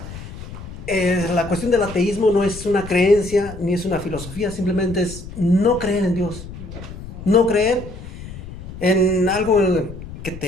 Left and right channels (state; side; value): noise; left; rumble, 12 dB below the sound